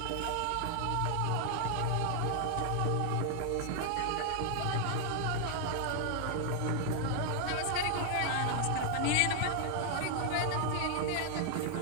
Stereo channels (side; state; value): both; different; correlation 0.00